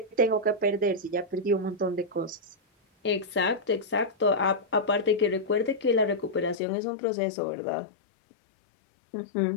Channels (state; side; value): drops out; right; at 6.6 s